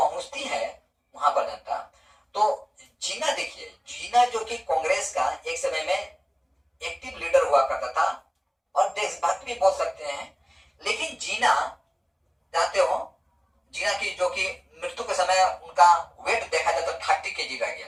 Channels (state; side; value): identical; both; correlation 1.00